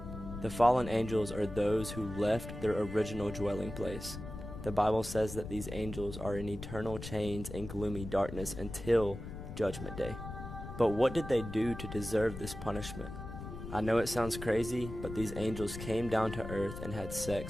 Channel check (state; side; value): noise; left; rumble, 9 dB below the sound